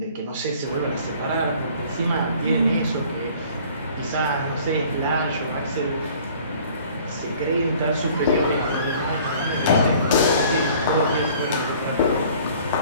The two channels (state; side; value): inverted; both; correlation -0.52